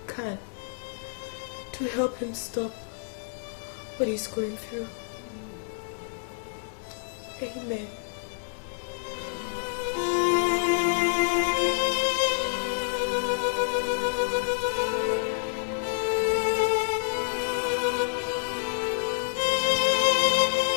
can to help him stop what he's going through. Amen.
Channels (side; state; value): right; silent; digital silence